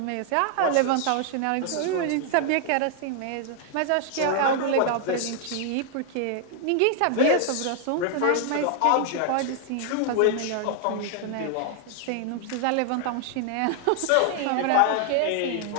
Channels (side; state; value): both; different; correlation 0.00